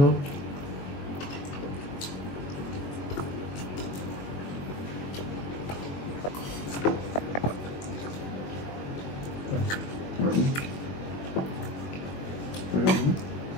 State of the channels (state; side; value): late; right; 22 ms